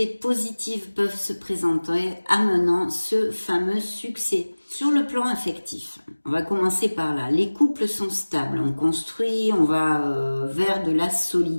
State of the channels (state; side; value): inverted; both; correlation -1.00